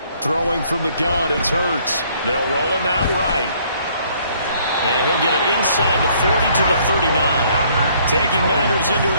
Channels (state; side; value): inverted; both; correlation -0.63